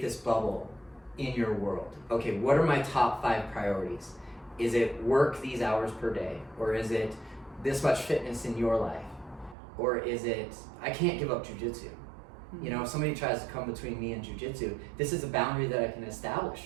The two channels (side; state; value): left; drops out; at 9.6 s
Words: this bubble in your world. Okay, what are my top 5 priorities? Is it work these hours per day? Or is it this much fitness in your life? Or is it, I can't give up jujitsu? You know, if somebody tries to come between me and jujitsu, this is a boundary that I can establish